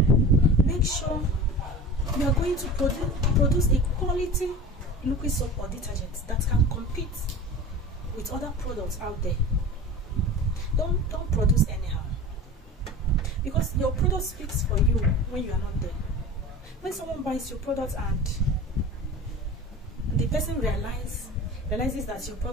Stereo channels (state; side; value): normal; both; correlation 0.35